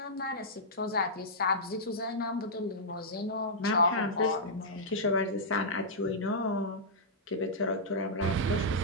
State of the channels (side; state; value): both; normal; correlation -0.11